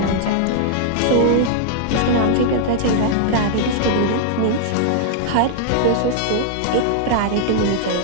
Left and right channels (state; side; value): different; both; correlation -0.01